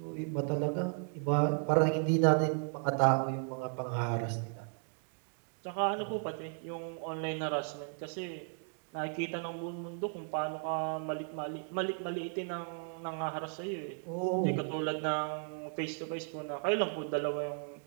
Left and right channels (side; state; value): left; silent; 54 dB below the other